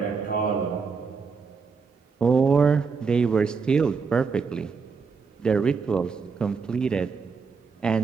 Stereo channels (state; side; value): quieter; left; 5.2 dB